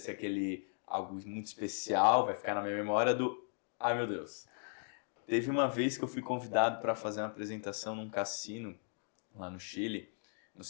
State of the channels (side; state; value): right; silent; 53 dB below the other